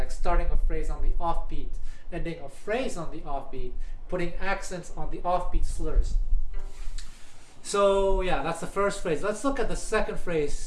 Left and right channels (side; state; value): both; identical; correlation 1.00